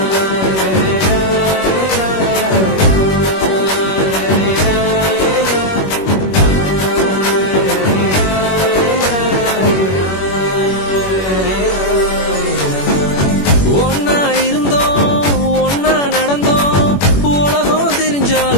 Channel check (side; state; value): right; late; 21 ms